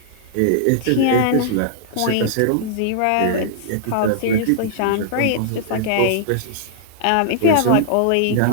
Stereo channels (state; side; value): different; both; correlation -0.01